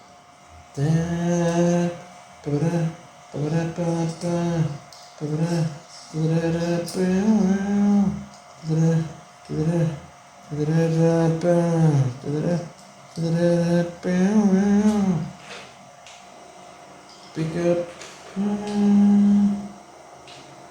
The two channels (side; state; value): both; identical; correlation 1.00